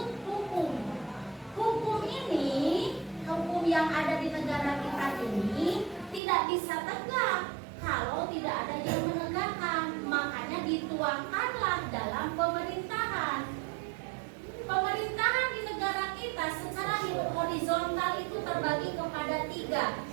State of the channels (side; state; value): left; drops out; at 6.2 s